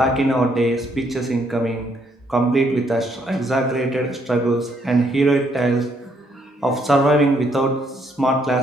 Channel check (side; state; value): both; normal; correlation 0.71